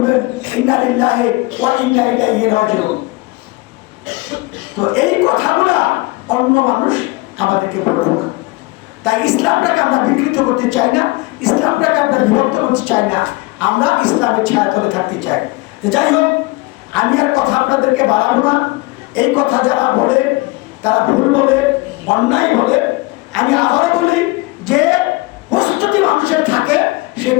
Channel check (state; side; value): quieter; right; 23.2 dB